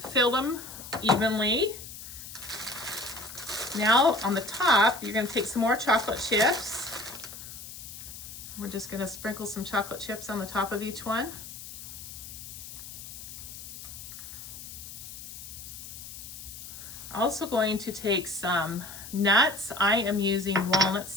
filled them evenly. Now on the top, you're gonna take some more chocolate chips. We're just gonna sprinkle some chocolate chips on the top of each one. Also going to take some nuts. I am using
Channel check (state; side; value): noise; left; hiss, 12 dB below the sound